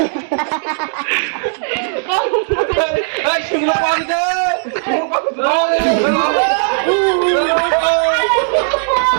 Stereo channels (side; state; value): left; silent; digital silence